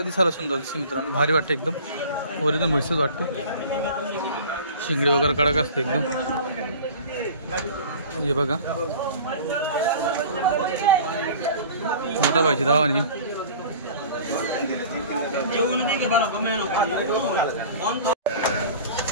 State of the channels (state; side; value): inverted; both; correlation -0.42